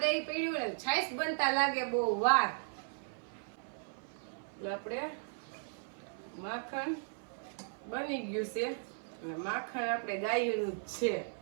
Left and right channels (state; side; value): silent; left; 54 dB below the other